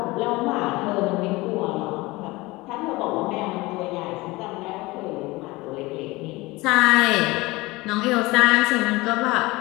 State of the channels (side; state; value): right; quieter; 21.7 dB